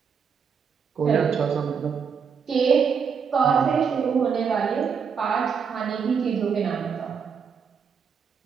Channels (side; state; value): left; quieter; 6.5 dB